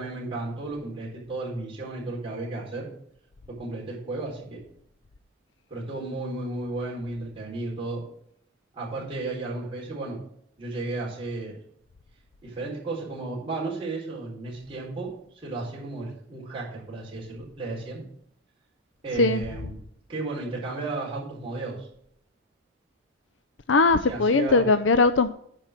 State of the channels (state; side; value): normal; both; correlation -0.01